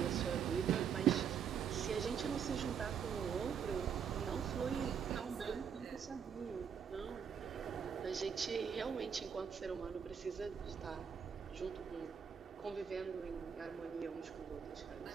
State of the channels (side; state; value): left; quieter; 7.4 dB